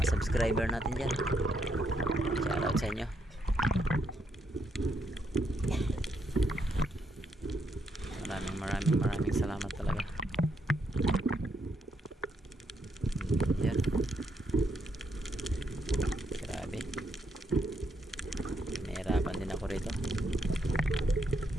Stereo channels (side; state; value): both; normal; correlation 0.77